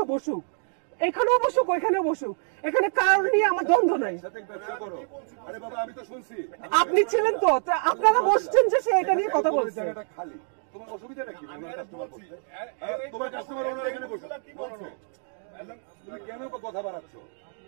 বসুক, এখানেও বসুক ওইখানেও বসুক, এখানে কারণ নিয়ে আমার দ্বন্দ্ব নাই। আপনি ছিলেন তো, আপনারা বসছেন যে সে এটা নিয়ে কথা বলছে। তোমার অসুবিধা নাকি? তোমার কাস্টমার এখানে বসো, কেন কথা বাড়াচ্ছ?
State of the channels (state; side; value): silent; left; 60 dB below the other